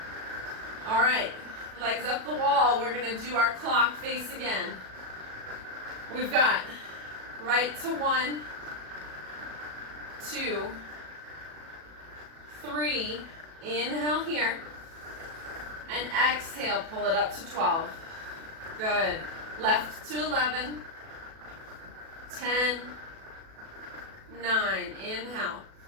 All right, legs up the wall. We're gonna do our clock face again. We've got right to 1, 2, 3. Inhale here. And exhale, pull it up to 12. Good. Left to 11. 10. 9. Inhale.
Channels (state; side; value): late; left; 37 ms